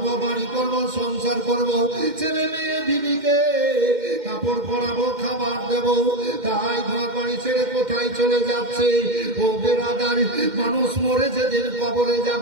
বাড়ি করবো, সংসার করবো, ছেলে মেয়ে বিবিকে কাপড় পরাবো, খাবার দেব, তাই ঘর বাড়ি ছেড়ে কোথায় চলে যাচ্ছে? ও বেরাদার, মানুষ মরে যেদিন কবরে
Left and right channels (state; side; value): late; left; 2.1 ms